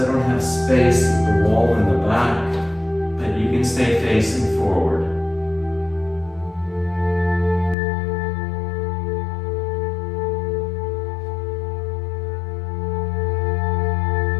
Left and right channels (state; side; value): drops out; right; at 7.8 s